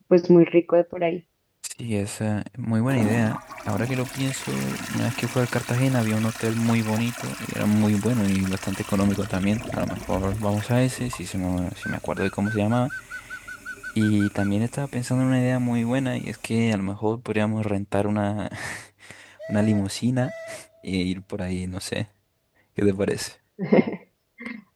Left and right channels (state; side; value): identical; both; correlation 1.00